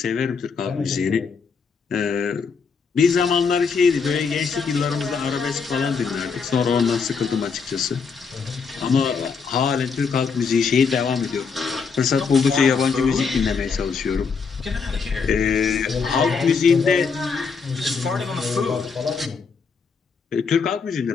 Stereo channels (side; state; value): right; quieter; 5.5 dB